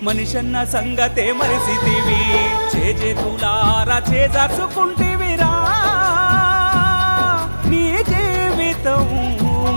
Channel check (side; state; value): both; inverted; correlation -1.00